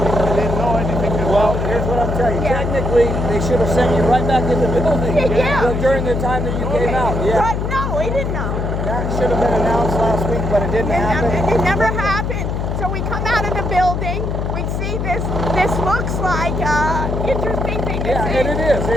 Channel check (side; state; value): left; noise; hum, 2 dB below the sound